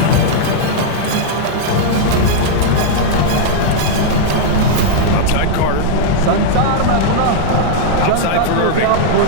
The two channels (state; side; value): different; both; correlation -0.01